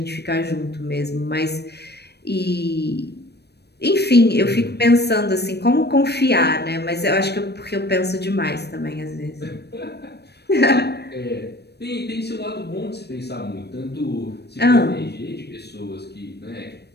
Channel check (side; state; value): right; late; 0.48 ms